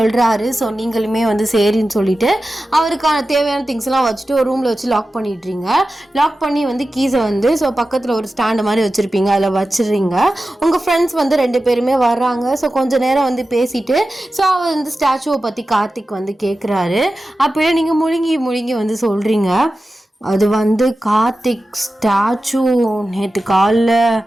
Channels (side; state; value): both; normal; correlation 0.94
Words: ஸோ நீங்களுமே வந்து சரின்னு சொல்லிவிட்டு அவருக்கான தேவையான திங்ஸ்லாம் வச்சுட்டு ஒரு ரூமில் வச்சு லாக் பண்ணிடுறீங்க. லாக் பண்ணி வந்து கீஸை வந்து ஸோ பக்கத்தில் ஒரு ஸ்டாண்டு மாதிரி வச்சுருப்பீங்க, அதில் வச்சிடுறீங்க. உங்கள் ஃப்ரெண்ட்ஸ் வந்து 2 பேருமே வர்றாங்க. ஸோ கொஞ்சம் நேரம் வந்து பேசிட்டு, ஸோ அவர் வந்து ஸ்டாச்சுவை பற்றி கார்த்திக் வந்து கேட்குறாரு. அப்போயே நீங்கள் முழுங்கி வந்து சொல்கிறீங்க, அது வந்து கார்த்திக் ஸ்டாச்சு நேற்று காலில்